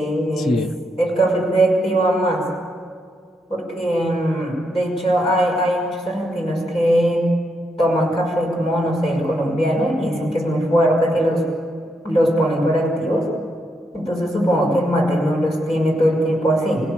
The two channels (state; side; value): normal; both; correlation 0.80